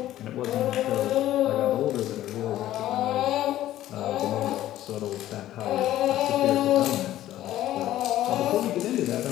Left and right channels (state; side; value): quieter; right; 13.6 dB